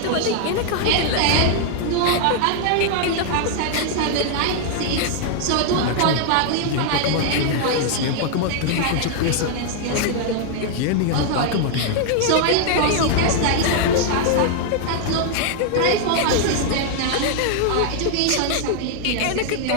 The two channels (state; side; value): different; both; correlation 0.00